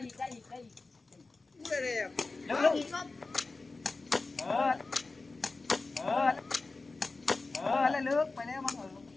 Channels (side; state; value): right; quieter; 3.6 dB